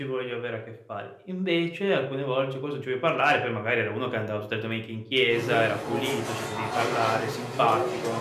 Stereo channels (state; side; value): identical; both; correlation 1.00